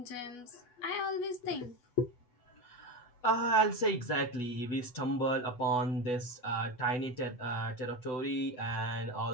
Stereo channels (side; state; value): right; late; 8.2 ms